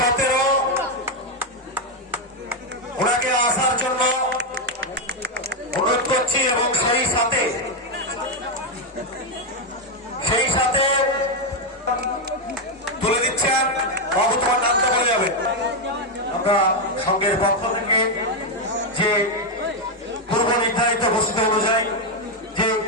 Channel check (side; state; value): both; normal; correlation 0.04